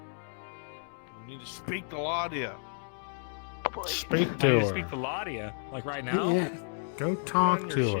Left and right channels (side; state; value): right; silent; digital silence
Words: need to speak to Laudia. Speak I to need to her. speak to Laudia, like right now. yeah. Go talk to her.